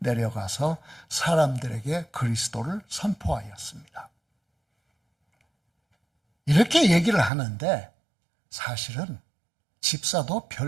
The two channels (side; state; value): left; drops out; at 7.3 s